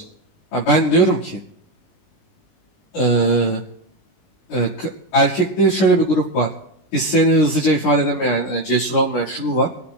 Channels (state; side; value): late; right; 20 ms